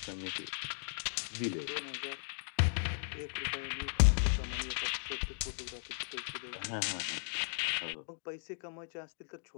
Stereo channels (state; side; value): silent; right; digital silence